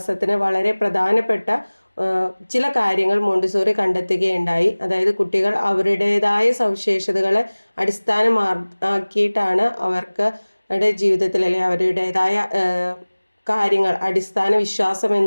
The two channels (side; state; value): both; inverted; correlation -1.00